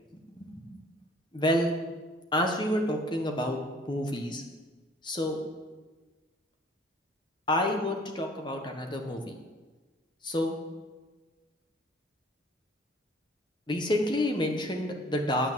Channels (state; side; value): normal; both; correlation 0.54